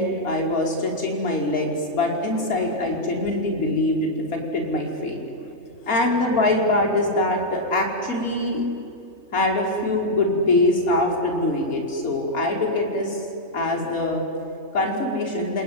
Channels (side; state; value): right; late; 3.3 ms